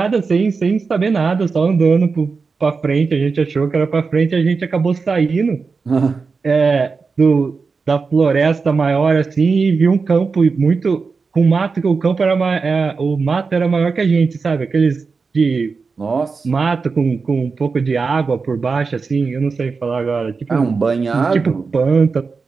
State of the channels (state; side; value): quieter; left; 4.7 dB